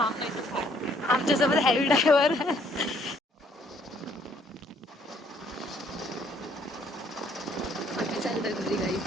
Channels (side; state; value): both; normal; correlation 0.64